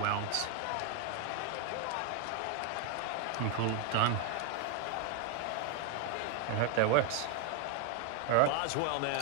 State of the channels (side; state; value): both; different; correlation 0.01